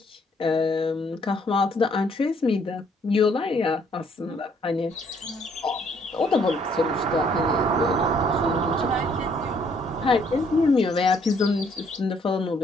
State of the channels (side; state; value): both; normal; correlation 0.66